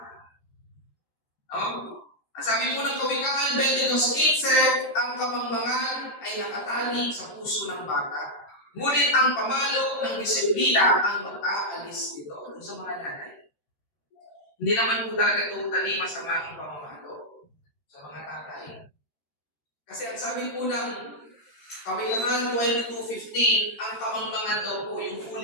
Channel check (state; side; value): late; right; 13 ms